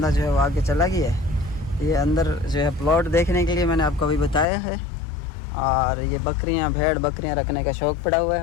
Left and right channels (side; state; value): right; drops out; at 4.5 s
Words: जो है वो आगे चला गया है। ये अंदर जो है प्लॉट देखने के लिए मैंने आपको अभी बताया है। और ये बकरियाँ भेड़ बकरियाँ रखने का शौक़ पड़ा हुआ है